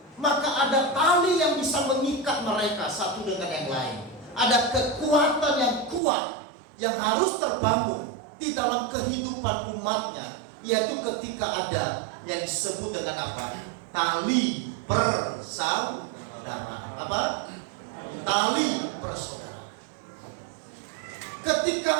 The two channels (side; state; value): left; drops out; at 6.0 s